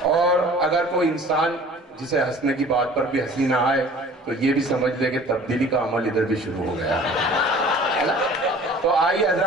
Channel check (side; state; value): both; normal; correlation 0.47